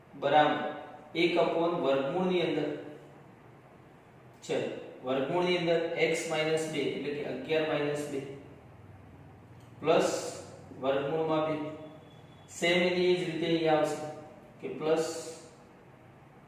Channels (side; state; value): both; identical; correlation 1.00